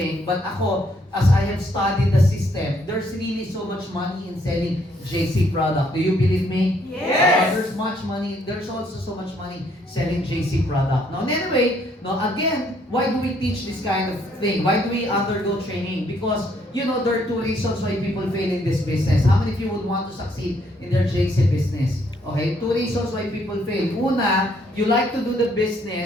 but ako, as I have studied the system, there's really so much money in selling JC product. Do you believe me? Yes. There's much money. There's also so much money selling JC product. Now, anyway, again, why do we teach this kind of thing? Why do we undergo training? Because, there are two reasons why people fail in this business. How many of you would want to succeed in their JC business? Okay, two reasons why people fail. Una, you like to do the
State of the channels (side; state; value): both; normal; correlation 0.68